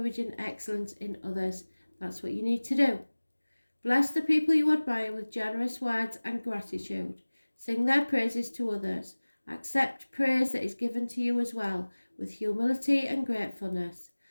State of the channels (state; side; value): inverted; both; correlation -1.00